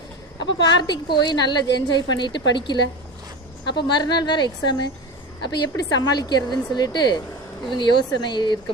அப்போ பார்ட்டிக்கு போய் நல்லா என்ஜாய் பண்ணிட்டு படிக்கல. அப்போ மறுநாள் வேறு எக்ஸாமு. அப்போ எப்படி சமாளிக்கிறதுன்னு சொல்லிட்டு இவங்க யோசனை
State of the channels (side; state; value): both; normal; correlation 0.27